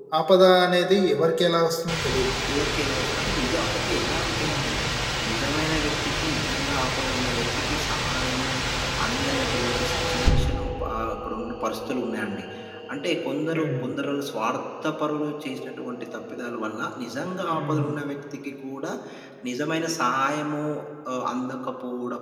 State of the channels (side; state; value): both; identical; correlation 1.00